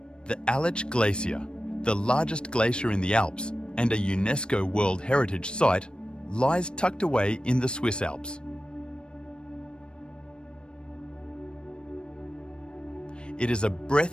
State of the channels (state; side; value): late; right; 0.054 ms